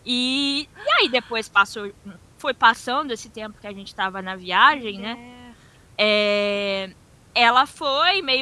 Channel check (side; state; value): both; identical; correlation 1.00